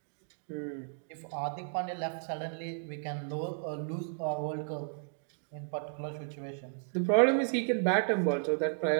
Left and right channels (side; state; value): left; silent; digital silence